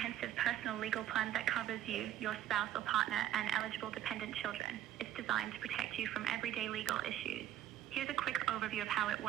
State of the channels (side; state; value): left; quieter; 12.0 dB